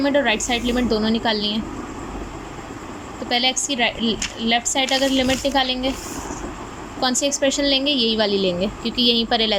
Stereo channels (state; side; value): identical; both; correlation 1.00